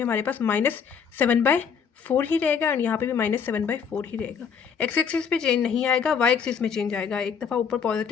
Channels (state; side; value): quieter; right; 6.8 dB